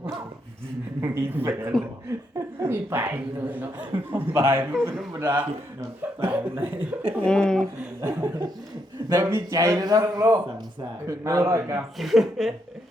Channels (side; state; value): both; normal; correlation 0.78